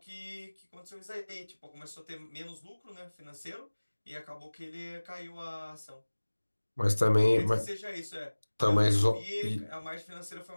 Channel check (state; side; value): inverted; both; correlation -1.00